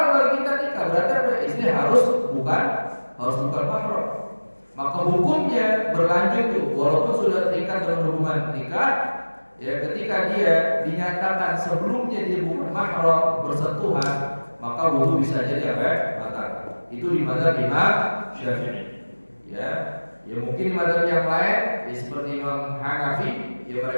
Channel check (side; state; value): both; inverted; correlation -1.00